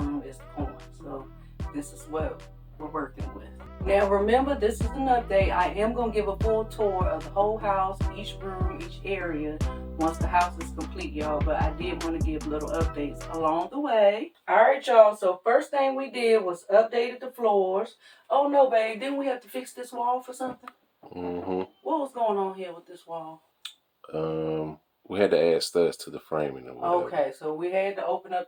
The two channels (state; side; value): identical; both; correlation 1.00